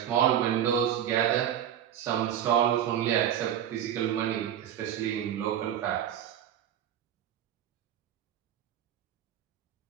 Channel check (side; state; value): left; quieter; 10.2 dB